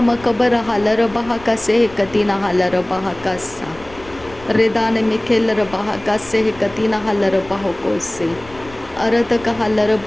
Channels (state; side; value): noise; left; rumble, 20 dB below the sound